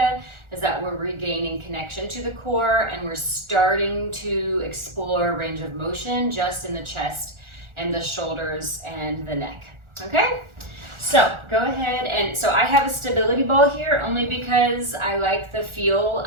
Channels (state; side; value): late; left; 1.4 ms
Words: is that we're regaining connection to the core and we're starting to explore range of motion just in the chest and the shoulders and the neck, okay? So go ahead and, so I have a stability ball here only because I like the feel